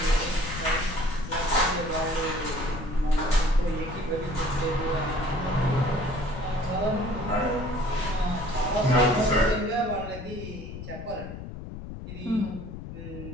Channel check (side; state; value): left; noise; rumble, 10 dB below the sound